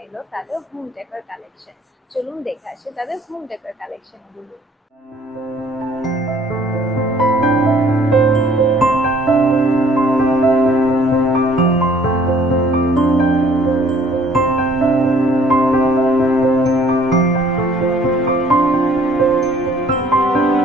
এলো তাদের হোম ডেকোর কালেকশন। চলুন দেখে আসি তাদের হোম ডেকোর কালেকশন গুলো।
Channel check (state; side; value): normal; both; correlation 0.57